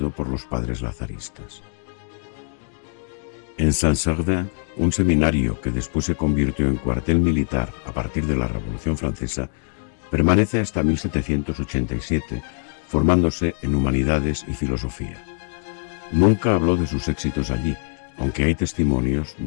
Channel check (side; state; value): right; silent; digital silence